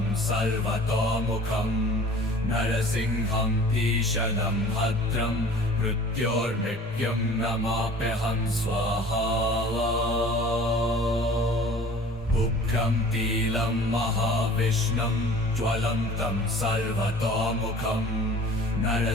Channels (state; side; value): normal; both; correlation 0.46